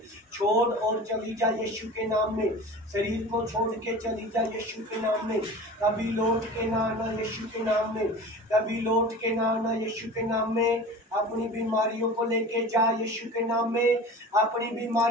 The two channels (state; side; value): normal; both; correlation 0.36